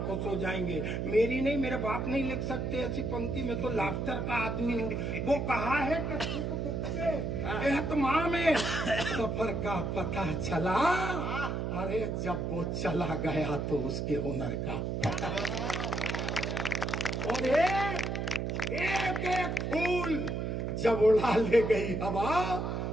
खुश हो जाएंगे। मेरी नहीं, मेरे बाप नहीं लिख सकते ऐसी पंक्ति, में तो लाफ्टर का आदमी हूँ। वो कहा है कि सुख दुख के एहतमाम में सफर का पता चला, अरे जब वो चला गया तो उसके हुनर का। और एक एक फूल जब उड़ा ले गई हवा,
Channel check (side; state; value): right; noise; hum, 1 dB below the sound